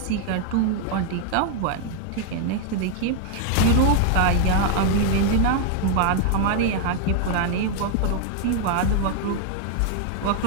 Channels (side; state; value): both; different; correlation 0.00